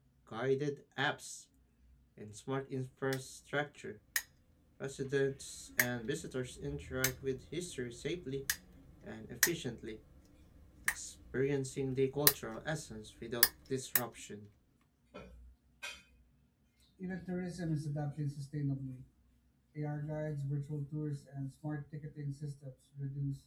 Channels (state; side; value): identical; both; correlation 1.00